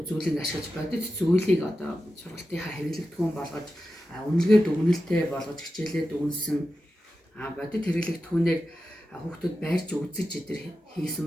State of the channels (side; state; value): both; normal; correlation 0.92